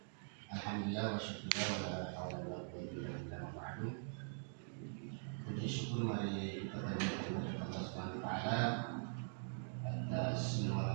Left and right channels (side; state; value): left; silent; digital silence